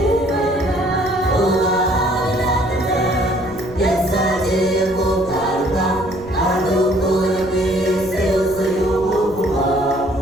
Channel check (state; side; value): noise; right; rumble, 18 dB below the sound